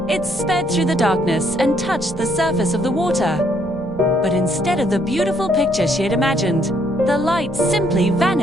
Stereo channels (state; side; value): noise; left; rumble, 18 dB below the sound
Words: It sped through the darkness and touched the surface of the water. But instead of the beautiful picture she had imagined, the light simply